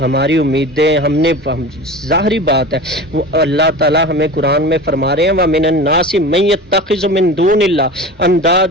امیدیں ظاہری بات ہے، وہ اللہ تعالیٰ ہمیں قرآن میں فرما رہے ہیں وَمِنَ النَّاسِ مَن يَتَّخِذُ مِن دُونِ اللَّهِ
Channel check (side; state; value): both; normal; correlation 0.33